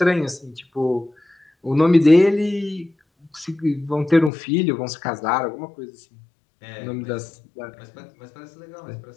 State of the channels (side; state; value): right; drops out; at 4.3 s